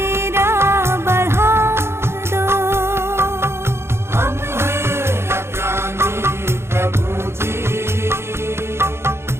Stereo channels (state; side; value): late; left; 0.12 ms